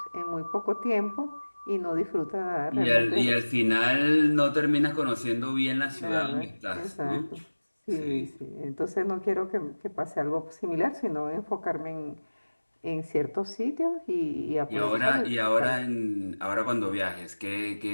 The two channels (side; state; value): both; inverted; correlation -1.00